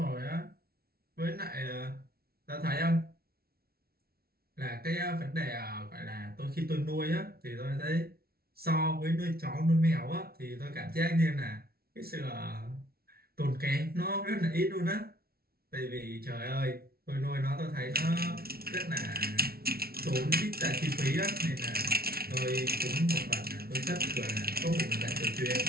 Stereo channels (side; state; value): left; late; 0.44 ms